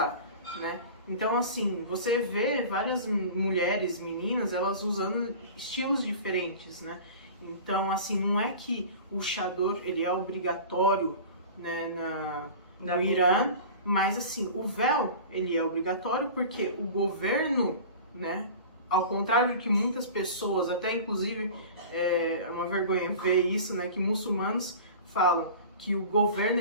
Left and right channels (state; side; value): inverted; both; correlation -0.37